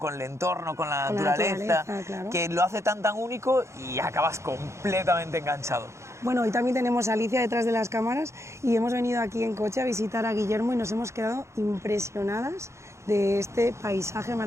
el entorno, con la naturaleza, claro. que lo hace tan único y acabas completamente enganchado. Bueno, hoy también tenemos a Alicia detrás de las cámaras y hemos venido aquí en coche a visitar a Guillermo y nos hemos quedado impresionadas de este paisaje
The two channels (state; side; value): late; left; 0.14 ms